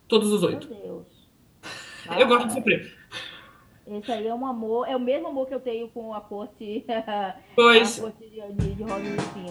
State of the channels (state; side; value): identical; both; correlation 1.00